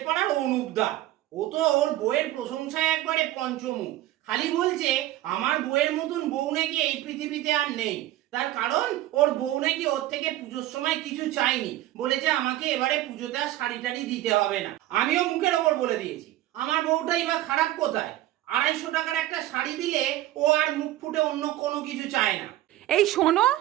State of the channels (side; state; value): left; quieter; 15.0 dB